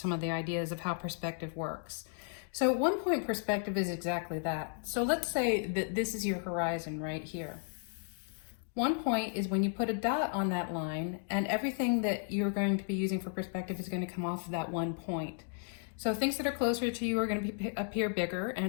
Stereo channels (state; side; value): silent; right; 55 dB below the other